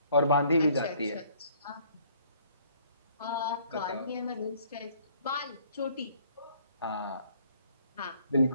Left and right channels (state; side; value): inverted; both; correlation -0.61